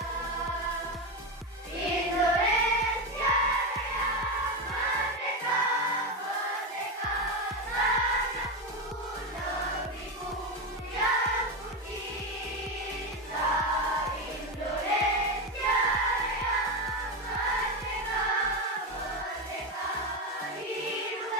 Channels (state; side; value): normal; both; correlation 0.14